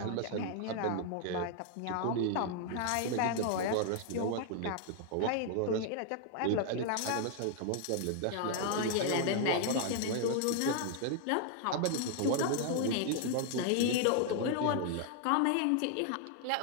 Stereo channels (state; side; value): different; both; correlation 0.00